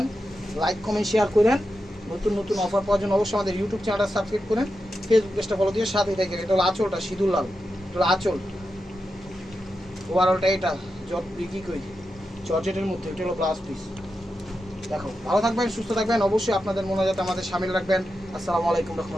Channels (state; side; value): normal; both; correlation 0.89